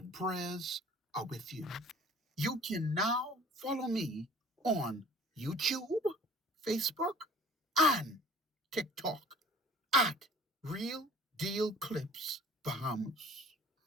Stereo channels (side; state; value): both; normal; correlation 0.48